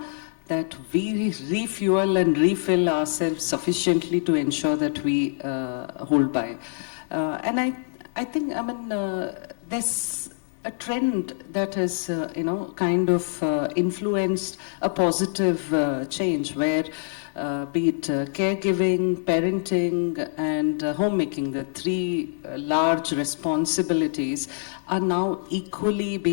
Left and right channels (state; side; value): silent; right; digital silence